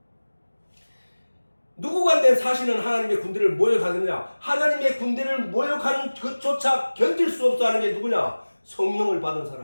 누구간데 사시는 하나님의 군대를 모욕하느냐? 하나님의 군대를 모욕하는 그조차 견딜 수 없어 하는 게 누구냐? 성령을 받은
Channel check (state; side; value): inverted; both; correlation -1.00